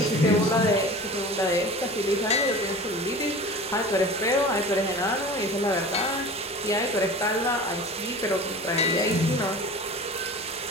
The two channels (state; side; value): normal; both; correlation 0.37